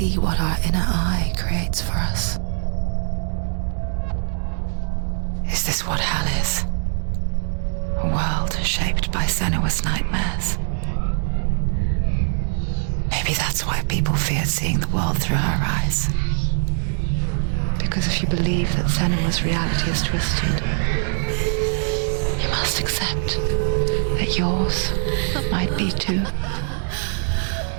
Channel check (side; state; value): left; silent; digital silence